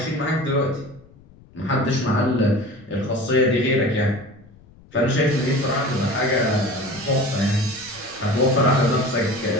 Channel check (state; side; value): noise; left; rumble, 25 dB below the sound